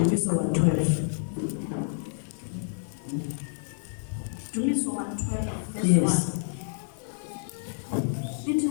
112. Indumiso 112 verse 1. Yes. Ithi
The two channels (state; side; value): silent; right; 55 dB below the other